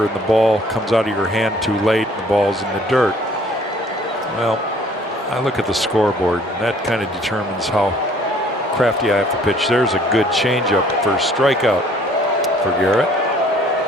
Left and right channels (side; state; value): both; normal; correlation 0.57